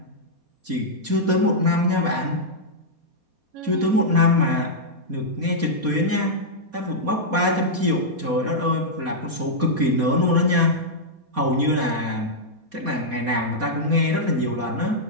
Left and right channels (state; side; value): late; left; 4.2 ms